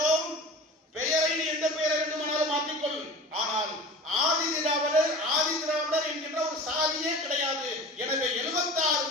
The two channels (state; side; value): normal; both; correlation 0.37